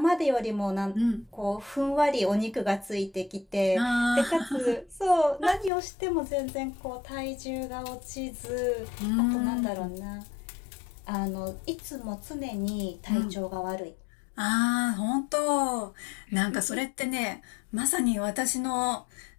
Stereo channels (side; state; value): right; drops out; at 5.7 s